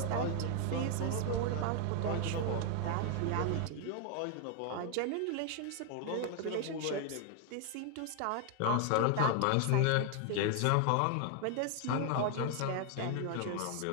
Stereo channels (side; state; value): both; different; correlation 0.00